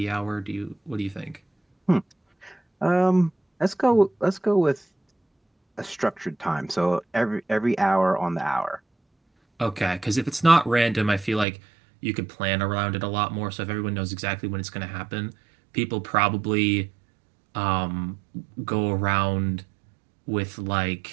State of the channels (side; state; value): left; drops out; at 11.5 s